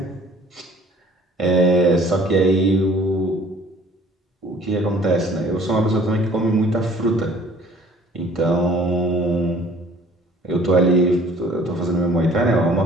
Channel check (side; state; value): both; normal; correlation 0.53